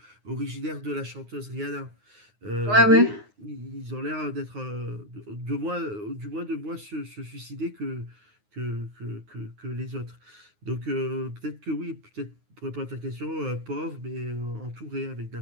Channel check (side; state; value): left; late; 9.5 ms